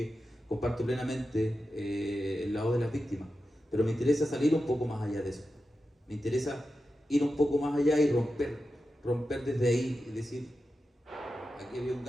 comparto plenamente el lado de las víctimas, pero me interesa salir un poco más allá de eso, me interesa ir un poco más allá y romper desde ahí y decir, aquí había un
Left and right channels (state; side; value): normal; both; correlation 0.91